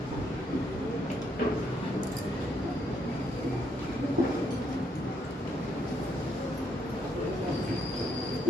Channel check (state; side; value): normal; both; correlation 0.74